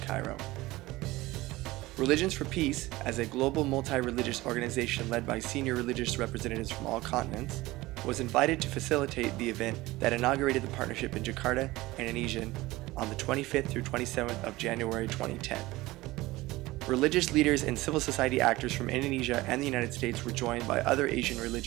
Religions for Peace, as a global multi-religious organization led by senior religious representatives from all continents, was invited to facilitate the event that inaugurated the partnership in Jakarta, Indonesia, on the 25th through 27th of January 2010. Religious leaders and civil society actors from Indonesia and the United States were joined by other Asian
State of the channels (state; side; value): quieter; left; 19.2 dB